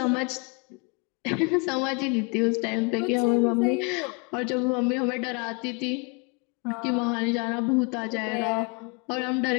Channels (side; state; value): right; quieter; 31.7 dB